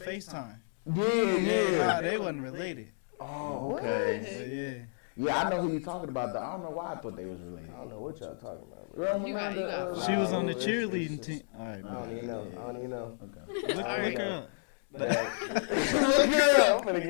Yeah. Nah, they wasn't related. Oh, okay. But yeah. Yeah, I know who you're talking about. Though I don't know why I thought they was related. I don't know what y'all talking about. Bro. Girl, You got- you got- She was on the it's- cheerleading team. All right, I don't even know. I don't even know. Okay. look her up. Look girl, I'm finna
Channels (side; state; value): right; silent; digital silence